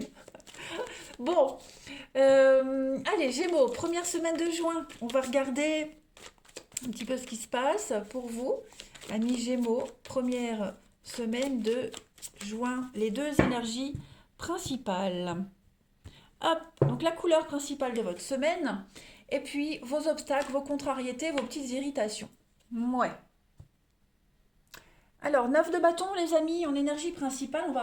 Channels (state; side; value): identical; both; correlation 1.00